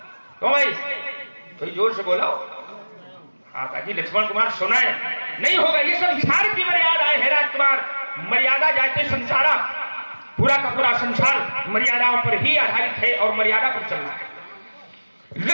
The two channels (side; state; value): both; inverted; correlation -1.00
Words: तो भाई कोई जोर से बोलो, हाँ ताकि लक्ष्मण कुमार सुनाए। नहीं होगा, ये संसार की मर्यादाएं है राजकुमार, मर्यादा जाते संसारा, पूरा का पूरा संसार मर्यादाओं पर ही आधारित है और मर्यादा पर चल रहा है।